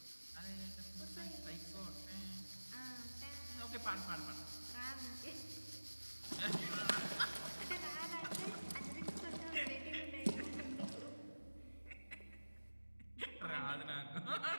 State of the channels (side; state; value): both; inverted; correlation -1.00